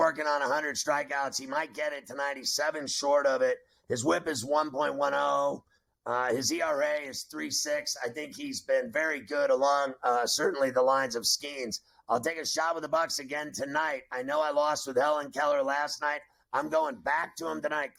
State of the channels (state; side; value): identical; both; correlation 1.00